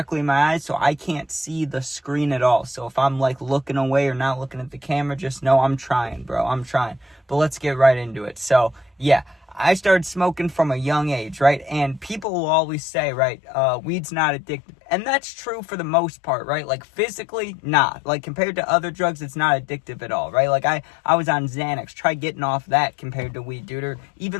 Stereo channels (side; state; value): right; drops out; at 12.2 s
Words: in my eyes, so I can't see the screen at all. So if I'm like looking away or not looking at the camera, just know I'm trying, bro. I'm trying. But let's get right into it. So, yeah. I started smoking from a young age, right? And people will always say, right, weed's not addictive. And that's true for the most part, right? Like physically, not. Like compared to other drugs, it's not addictive at all, right? Like I was on Xanax. Try getting off that compared to weed, dude. Or